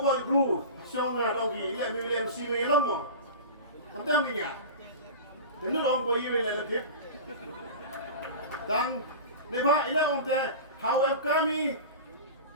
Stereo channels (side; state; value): both; inverted; correlation -0.32